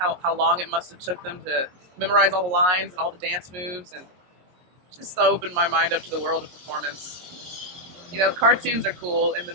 long it must have took them to memorize all the lines and all the dance moves, and just opened my mind up to the world of performance. You know, cartoons are cool and the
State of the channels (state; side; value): late; left; 22 ms